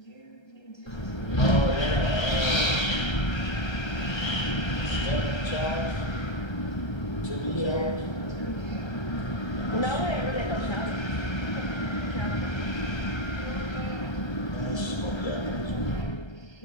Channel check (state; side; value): late; right; 1.3 ms